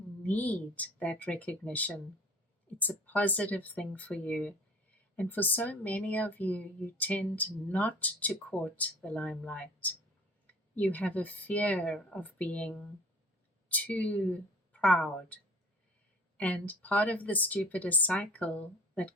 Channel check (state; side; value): normal; both; correlation 0.46